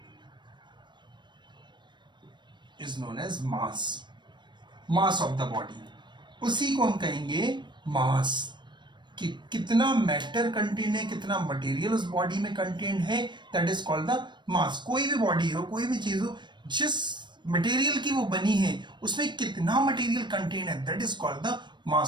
as mass, mass of the body। उसी को हम कहेंगे मास। कि कितना matter contain है, कितना मटेरियल उस बॉडी में कंटेन है, दैट इज कॉल्ड द मास। कोई भी बॉडी हो, कोई भी चीज हो, जिस मटेरियल की वो बनी है, उसमें कितना मटेरियल कंटेन है, that is called the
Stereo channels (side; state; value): left; late; 0.22 ms